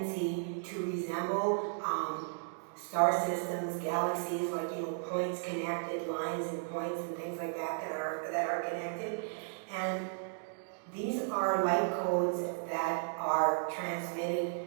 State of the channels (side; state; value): left; silent; digital silence